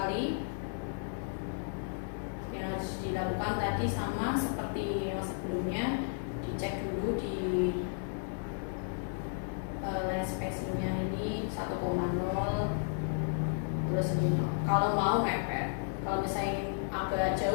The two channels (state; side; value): silent; right; digital silence